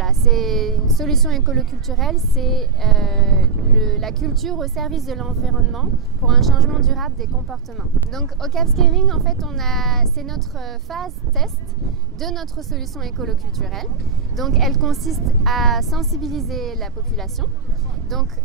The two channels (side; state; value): left; quieter; 5.3 dB